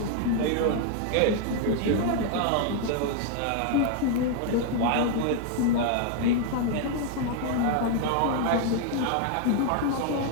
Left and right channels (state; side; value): different; both; correlation 0.00